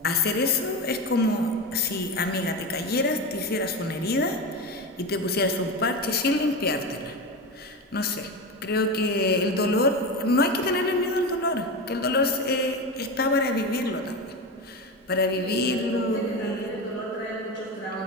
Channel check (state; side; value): normal; both; correlation 0.22